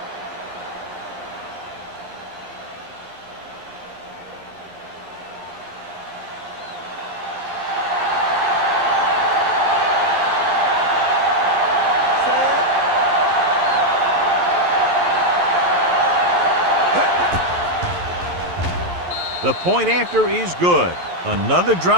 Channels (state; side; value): late; left; 11 ms